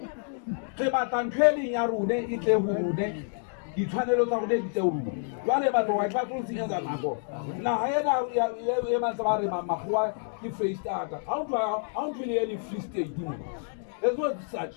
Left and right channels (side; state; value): right; silent; digital silence